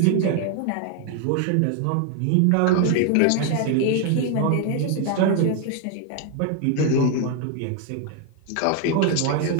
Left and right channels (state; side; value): different; both; correlation 0.01